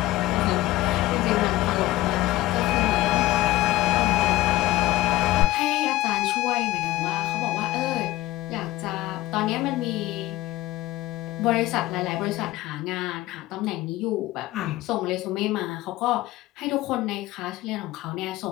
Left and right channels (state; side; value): quieter; right; 17.0 dB